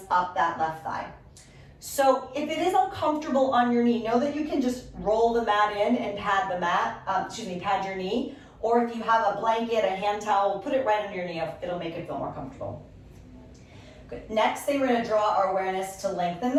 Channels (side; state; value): both; identical; correlation 1.00